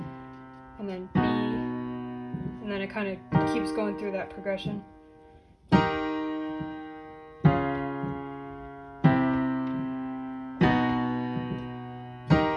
and then B, and then it kind of keeps going through that progression.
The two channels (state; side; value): identical; both; correlation 1.00